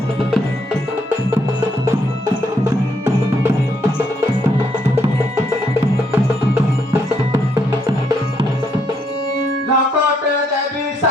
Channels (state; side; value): normal; both; correlation 0.73